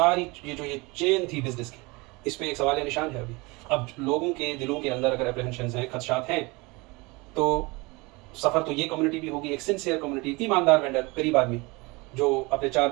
ये चेन थी बिजनेस की, इस पर एक सवाल निशान है अभी। अब लोगों के दिलों के अंदर अगर अप्रहेंशन हैं, खदशात हैं, तो सफ़र तो ये कम्युनिटी भी होगी, एक सिंसियर कम्युनिटी, ईमानदार वेंडर, गरीब आदमी जो अपने 4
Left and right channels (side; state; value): left; quieter; 25.3 dB